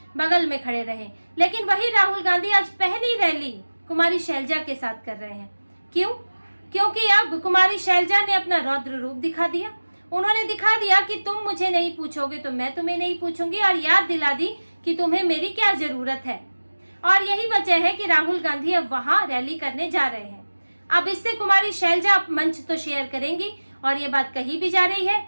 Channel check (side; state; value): both; inverted; correlation -1.00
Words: बगल में खड़े रहे। लेकिन वही राहुल गांधी आज पहली रैली कुमारी शैलजा के साथ कर रहे हैं। क्यों? क्योंकि अब कुमारी शैलजा ने अपना रौद्र रूप दिखा दिया। उन्होंने दिखा दिया कि तुम मुझे नहीं पूछोगे तो मैं तुम्हें नहीं पूछूंगी, और याद दिला दी कि तुम्हें मेरी क्या जरूरत है। और यही वजह है कि राहुल गांधी अब वहां रैली करने जा रहे हैं। अब इससे कुमारी शैलजा मंच तो शेयर करेंगी और ये बात कही भी जा रही है